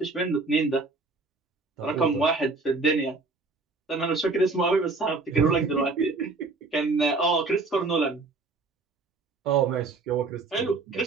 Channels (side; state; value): left; quieter; 3.7 dB